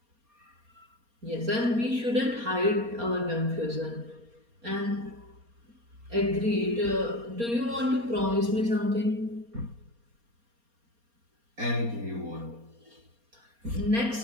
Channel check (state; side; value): late; left; 4.3 ms